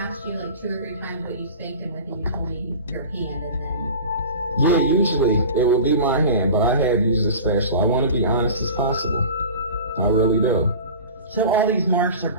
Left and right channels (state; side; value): inverted; both; correlation -0.36